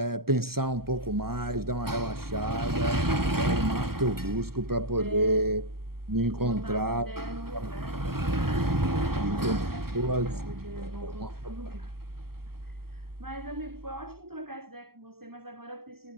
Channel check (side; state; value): left; late; 0.94 ms